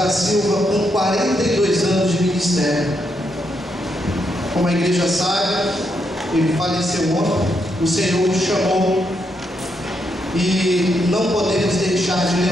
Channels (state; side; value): normal; both; correlation 0.79